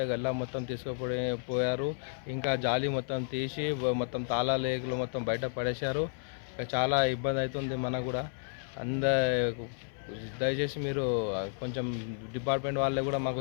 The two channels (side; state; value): right; silent; 56 dB below the other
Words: గల్లా మొత్తం తీసుకుపోయారు. ఇంకా జాలి మొత్తం తీసి మొత్తం తాళాలు లేకులు మొత్తం బయట పడేశారు. చాలా ఇబ్బంది అవుతుంది మనకు కూడా. దయచేసి మీరు కొంచెం డిపార్ట్మెంట్ వాళ్ళే కూడా